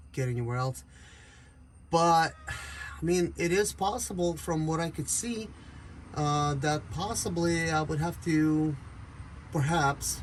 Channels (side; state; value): both; identical; correlation 1.00